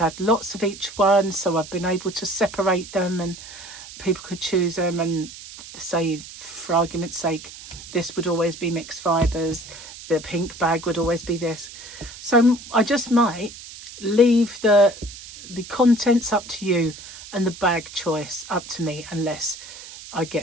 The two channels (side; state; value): right; noise; hiss, 15 dB below the sound